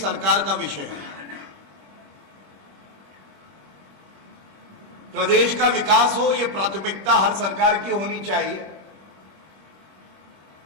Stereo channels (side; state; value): left; late; 21 ms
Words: सरकार का विषय है। प्रदेश का विकास हो, यह प्राथमिकता हर सरकार की होनी चाहिए,